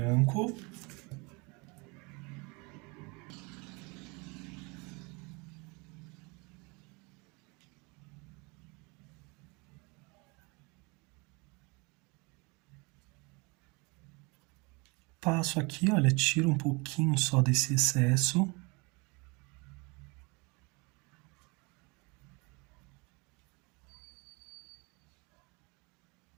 Passo aqui, olha, tiro um pouquinho só desse excesso.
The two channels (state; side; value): quieter; left; 28.5 dB